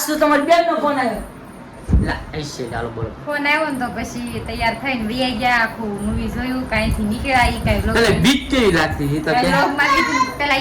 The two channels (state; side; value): identical; both; correlation 1.00